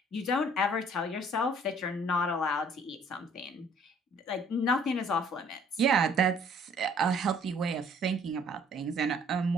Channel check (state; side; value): normal; both; correlation 0.58